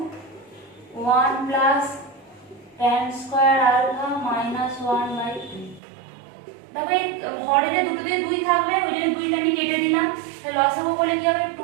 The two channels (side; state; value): left; drops out; at 5.8 s